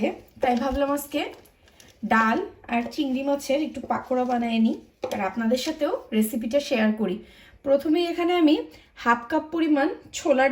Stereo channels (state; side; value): identical; both; correlation 1.00